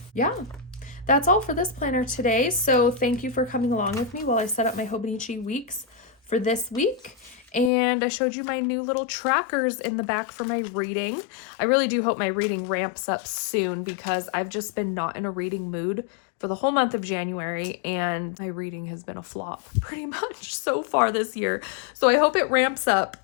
Yeah, that's all for this planner today. So thank you for coming along with me while I set up my Hobonichi weeks for this week. And I showed you my new little trackers in the back for my reading. I really do hope my reading ramps up soon because I've just been not in a reading mood for the whole month of January, and my reading has been a flop pretty much so far this year. So I hope it ramps up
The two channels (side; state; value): right; drops out; at 7.7 s